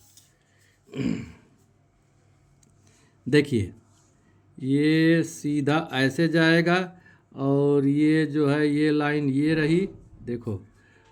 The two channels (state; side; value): identical; both; correlation 1.00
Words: देखिए ये सीधा ऐसे जाएगा और ये जो है ये लाइन ये रही, देखो